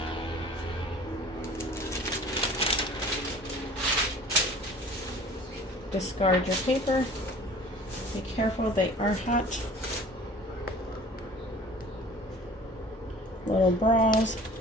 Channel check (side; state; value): both; normal; correlation 0.46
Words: Discard your paper. Be careful, they are hot. Little bras.